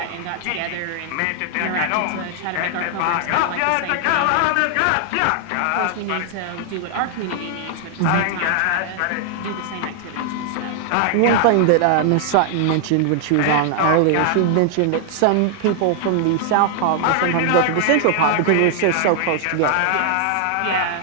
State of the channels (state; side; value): different; both; correlation 0.00